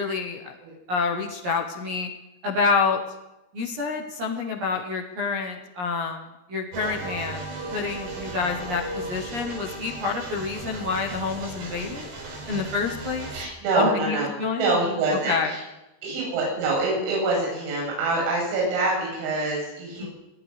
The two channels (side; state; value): left; late; 17 ms